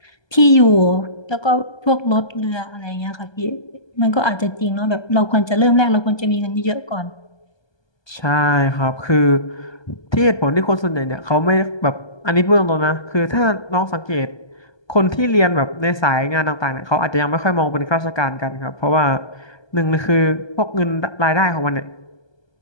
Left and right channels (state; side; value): late; right; 1.2 ms